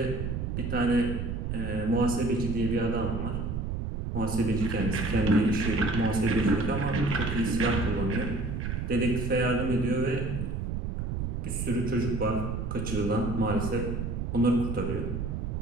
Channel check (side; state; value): right; noise; rumble, 3 dB below the sound